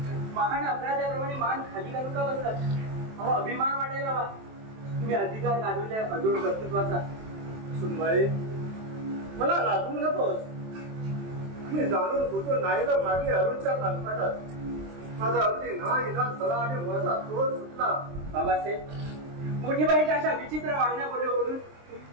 महान अपराध्याप्रमाणे मान खाली घालून का बसलात? अहो, अभिमान वाटायला हवा. तुम्ही अधिकार गाजवल्या अजून कर्तृत्वाचा. सुनबाई, मला लाजवू नकोस. मी जाणून बुजून नाही तर मागे अरुणच्या कानपाटात माझा अगदी ना इलाज झाला आणि माझा तोल सुटला. बाबासाहेब, मोठी बाईच्या अशा विचित्र वागण्या बोलल्यावरून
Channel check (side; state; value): left; late; 23 ms